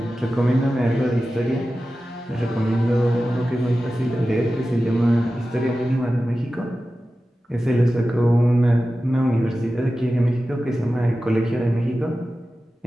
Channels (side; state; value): both; normal; correlation 0.94